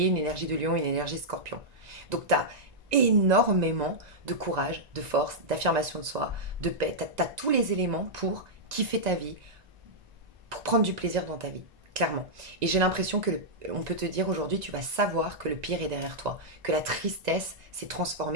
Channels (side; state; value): left; late; 1.9 ms